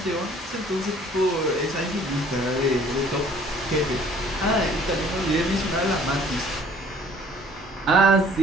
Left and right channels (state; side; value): normal; both; correlation 0.55